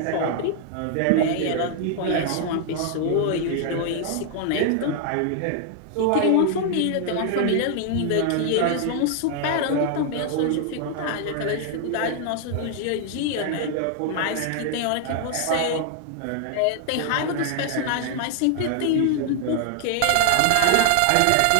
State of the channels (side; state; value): both; different; correlation 0.00